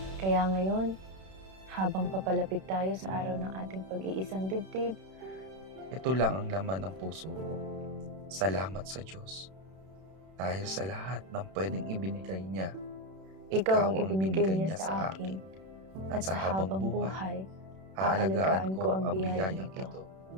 Kaya ngayon, habang papalapit tayo sa araw ng ating pag-iisang dibdib, Ito lang ang laman ng puso ko. Salamat sa Diyos. Dahil sa lahat ng pwedeng ibinigay niya, ikaw ang ibinigay niya sa akin. At sa habang buhay, aalagaan ko ang biyayang ito.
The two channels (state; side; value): late; left; 31 ms